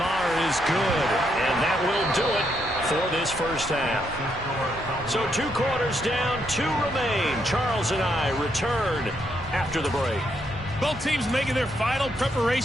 is good, and that will do it for this 1st half. So 2 quarters down, 2 remain. Charles and I return after the break. Both teams making their final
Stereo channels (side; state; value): both; normal; correlation 0.77